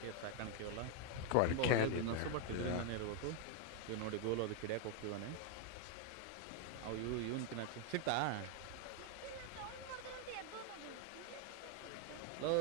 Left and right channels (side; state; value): both; different; correlation 0.01